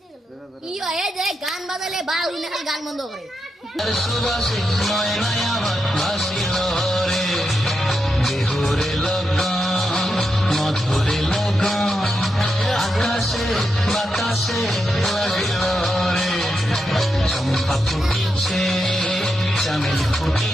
গান বাজালে বা গান বন্ধ করে তার সুবাসে ময়নায় আমার ভাসিল রে। বিহুরে লগন মধুরে লগন, আকাশে বাতাসে লাগিল রে। চম্পা ফুটিছে, চামেলি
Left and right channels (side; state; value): both; normal; correlation 0.85